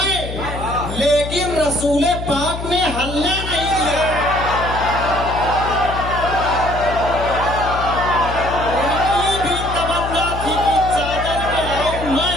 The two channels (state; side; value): noise; left; hum, 7 dB below the sound